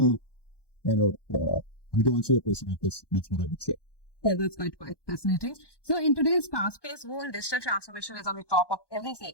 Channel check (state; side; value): late; right; 1.2 ms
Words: I don't answer your question. That's what I would say. Yeah, that's quite fascinating. So in today's fast-paced world, digital transformation is on the top of every